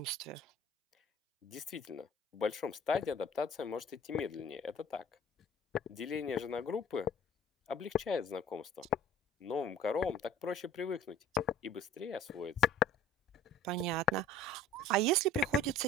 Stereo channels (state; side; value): normal; both; correlation 0.48